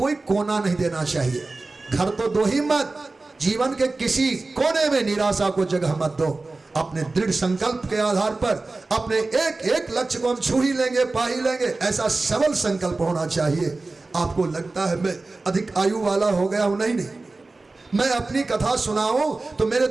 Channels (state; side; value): quieter; left; 3.4 dB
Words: कोना नहीं देना चाहिए। घर तो दो ही मत, जीवन के किसी कोने में निराशा को जगह मत दो। अपने दृढ़ संकल्प के आधार पर अपने एक एक लक्ष्य को हम छू ही लेंगे, पा ही लेंगे, ऐसा सबल संकल्प होना चाहिए। आपको लगता है मैं अधिक आयु वाला हो गया हूं? नहीं, मैं अपनी कथा सुनाऊं तो मेरे